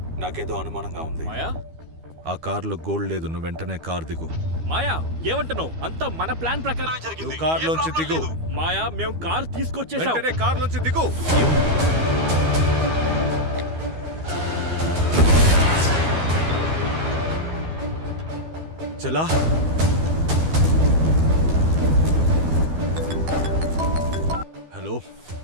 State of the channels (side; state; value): left; late; 12 ms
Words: నాకేదో అనుమానంగా ఉంది. మాయా, ఆ కార్లో గోల్డ్ లేదు. నువ్వు వెంటనే కార్ దిగు. మాయా ఏమంటున్నావు? అంతా మన ప్లాన్ ప్రకారమే జరిగింది. నువ్వు కార్లోంచి ఏ ప్రాబ్లం దిగు. లేదు. మాయా, మేము కార్ తీసుకొచ్చేసాం. వెంటనే కార్లోంచి దిగు. చలా. హలో.